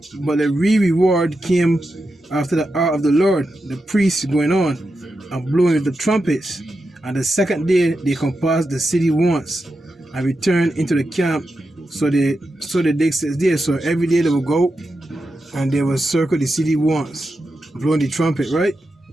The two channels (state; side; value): normal; both; correlation 0.89